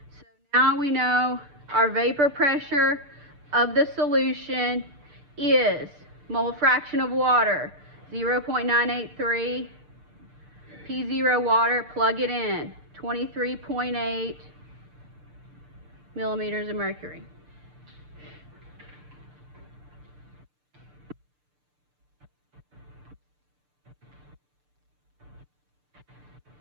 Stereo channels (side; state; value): left; late; 6.8 ms